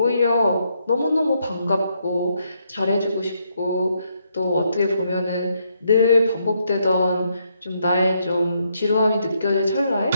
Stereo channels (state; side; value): inverted; both; correlation -0.76